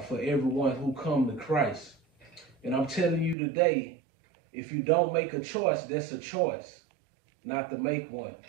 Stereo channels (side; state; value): left; drops out; at 3.4 s